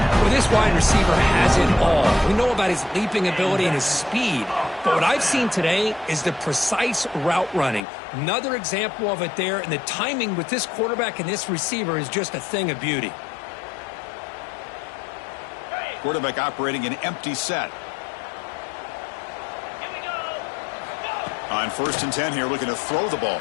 Well, this wide receiver has it all. We know about his leaping ability and his speed. But what I've seen today is the precise route running. Another example of it there, and the timing with this quarterback and this receiver is just a thing of beauty. Quarterback operating an empty set. On 1st and 10 here, looking to throw the ball.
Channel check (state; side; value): drops out; right; at 7.8 s